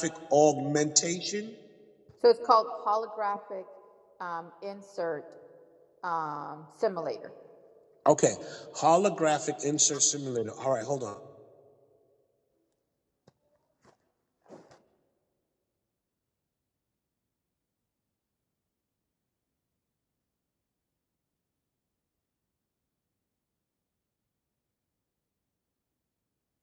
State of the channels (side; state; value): both; identical; correlation 1.00